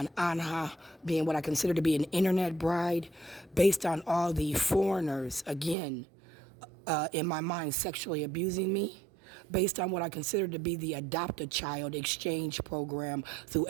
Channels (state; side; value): drops out; left; at 5.8 s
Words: Anha being what I consider to be an internet bride, based on all the foreigners, again, in my mind, sexually abusing me, based on what I consider to be the adopt-a-child exchange program through